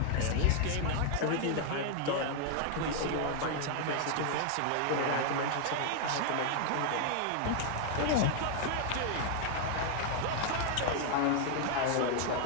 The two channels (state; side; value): different; both; correlation 0.00